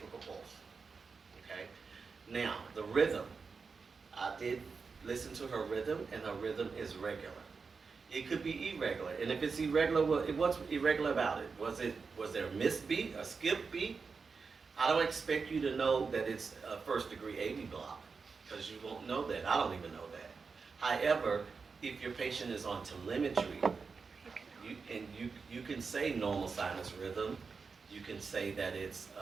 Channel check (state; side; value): quieter; left; 5.0 dB